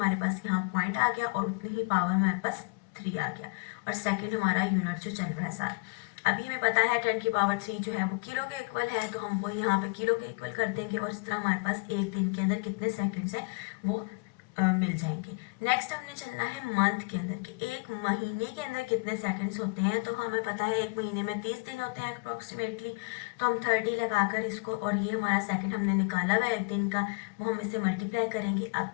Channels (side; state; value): right; quieter; 31.7 dB